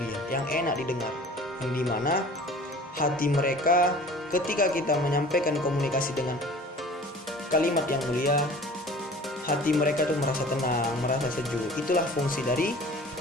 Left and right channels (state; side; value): normal; both; correlation 0.45